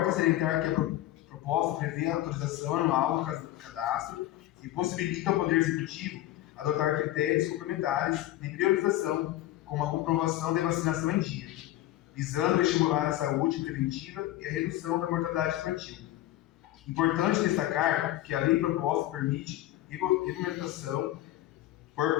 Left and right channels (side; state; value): right; quieter; 14.9 dB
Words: salientar que a proposta prevê a autorização anual do cadastro e possibilita ao Poder Executivo adotar critérios complementares de priorização, como a comprovação de vacinação em dia, visando estimular a saúde preventiva e a redução da mortalidade infantil. Importante destacar que a lei proposta permite regulamentação por